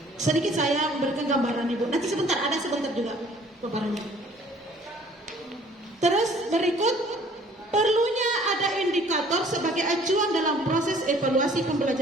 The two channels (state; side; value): normal; both; correlation 0.55